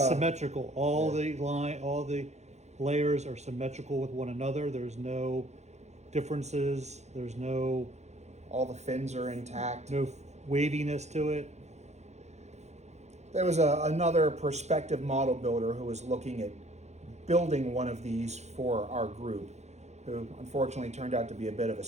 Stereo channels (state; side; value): late; left; 0.33 ms